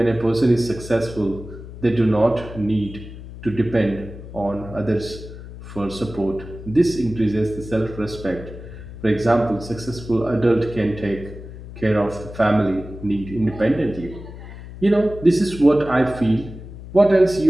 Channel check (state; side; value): noise; left; hum, 13 dB below the sound